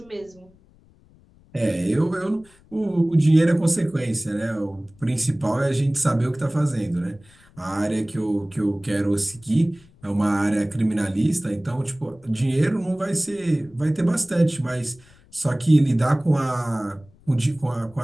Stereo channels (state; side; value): noise; left; rumble, 28 dB below the sound